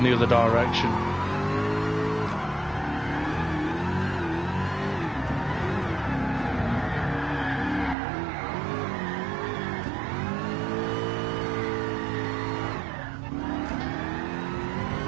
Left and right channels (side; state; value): left; drops out; at 8.0 s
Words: the other direction.